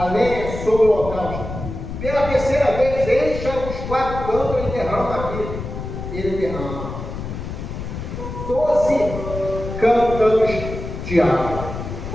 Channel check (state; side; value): noise; left; rumble, 8 dB below the sound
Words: lenha, sobre o holocausto. Pela terceira vez, encha os 4 cântaros e derrama aqui. Ele derrama 12 cântaros de água,